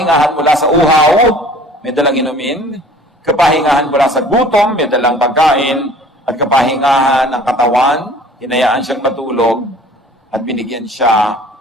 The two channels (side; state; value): both; normal; correlation 0.49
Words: mula sa uhaw, may dalang inumin, kapahingahan mula sa gutom, may dalang pagkain, at kapahingahan ng katawan, hinayaan siyang matulog, at binigyan siya